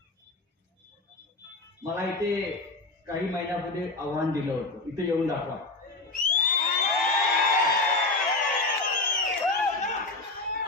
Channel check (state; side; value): quieter; right; 3.2 dB